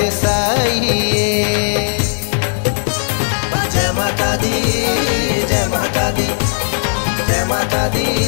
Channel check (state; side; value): silent; right; 65 dB below the other